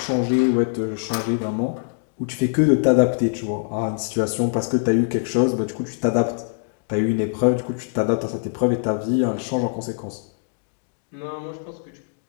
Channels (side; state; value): right; silent; digital silence